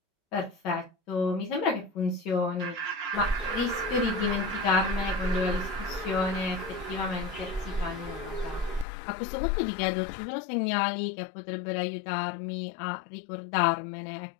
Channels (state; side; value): drops out; right; at 8.8 s